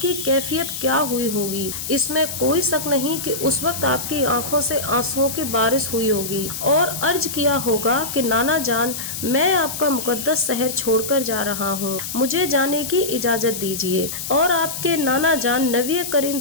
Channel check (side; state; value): left; noise; hiss, 6 dB below the sound